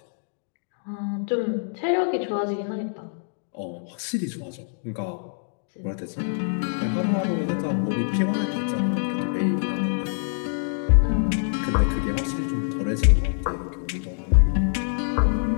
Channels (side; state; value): right; silent; digital silence